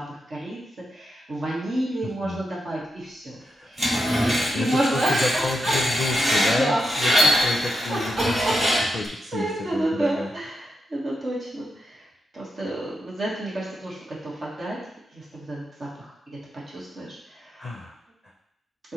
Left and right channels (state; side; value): normal; both; correlation 0.85